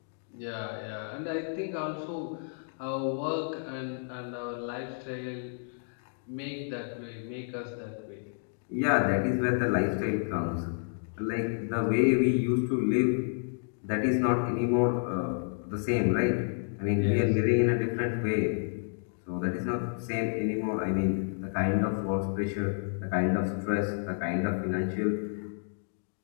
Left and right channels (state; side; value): silent; right; digital silence